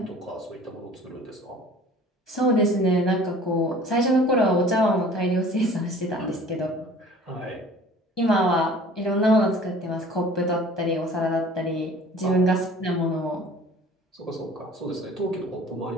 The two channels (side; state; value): both; normal; correlation 0.47